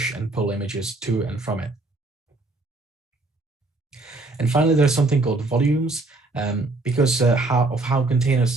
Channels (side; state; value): left; quieter; 3.1 dB